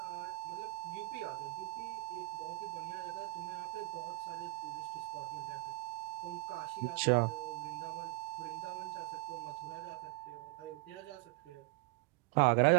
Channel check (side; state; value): left; quieter; 22.8 dB